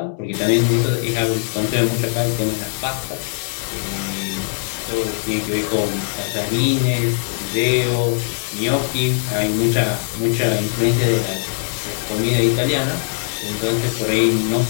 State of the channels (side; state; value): right; silent; 62 dB below the other